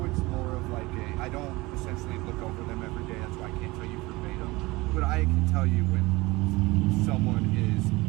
it's more of like I don't essentially look over them every day, that's why I can't tell you verbatim. But I can tell you when someone is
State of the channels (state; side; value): quieter; left; 21.8 dB